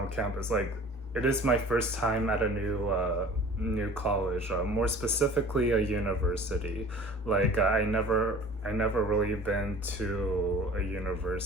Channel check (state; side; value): normal; both; correlation 0.45